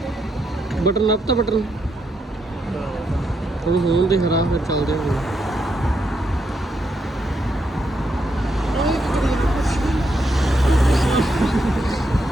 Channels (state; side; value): normal; both; correlation 0.80